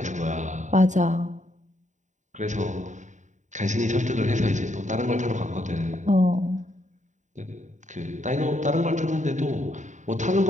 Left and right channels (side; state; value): left; late; 0.35 ms